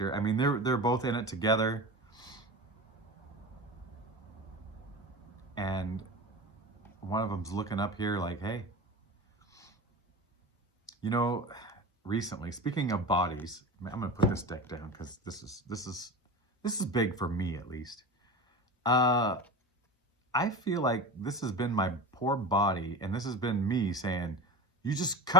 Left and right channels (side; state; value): both; normal; correlation 0.30